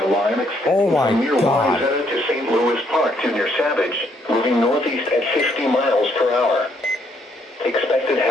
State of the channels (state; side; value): normal; both; correlation 0.71